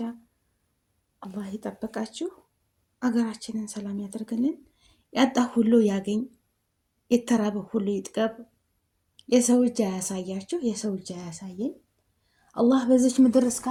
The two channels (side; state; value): both; identical; correlation 1.00